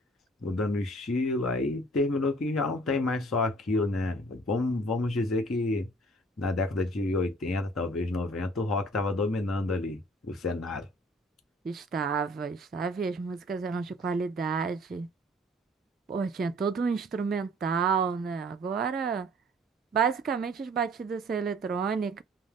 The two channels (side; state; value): both; normal; correlation 0.53